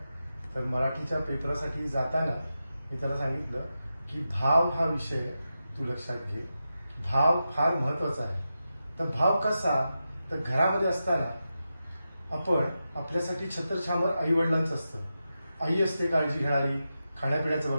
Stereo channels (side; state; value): both; inverted; correlation -0.90